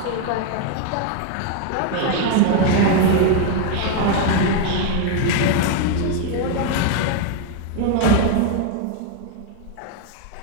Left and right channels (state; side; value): different; both; correlation 0.01